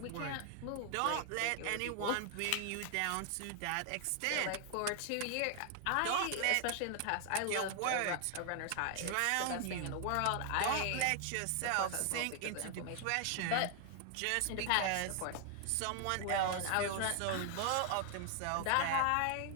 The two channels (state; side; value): different; both; correlation 0.00